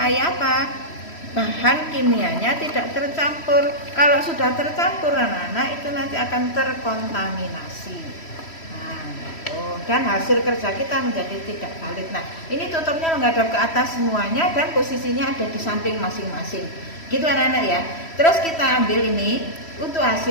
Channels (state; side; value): late; right; 3.1 ms